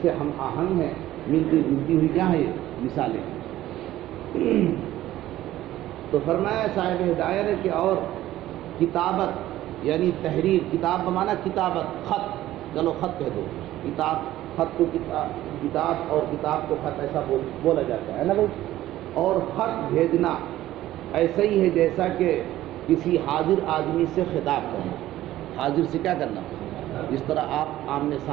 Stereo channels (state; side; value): quieter; left; 14.5 dB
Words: سے ہم آہنگ ہیں، ملتی جلتی ہوئی کیا ہے یہ مثالیں۔ تو فرمایا صاحب ہدایہ نے کہ اور کتابت یعنی تحریر، کتاب بمانا کتابت، خط، چلو خط کہہ دو، کتاب، خط کو کتاب اور کتاب کو خط ایسا بولا جاتا ہے نا بھائی۔ اور خط بھیجنا ایسا ہی ہے جیسا کہ کسی حاضر آدمی سے خطاب کرنا، حاضر سے کیا کرنا، جس طرح آپ آمنے